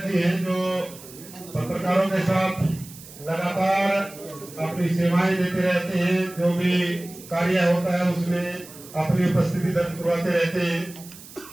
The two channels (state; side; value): noise; right; hiss, 18 dB below the sound